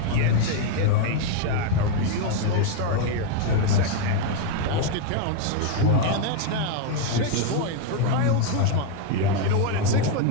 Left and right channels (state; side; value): different; both; correlation 0.01